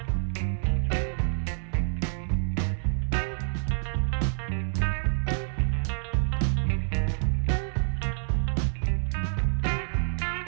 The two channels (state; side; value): silent; left; 60 dB below the other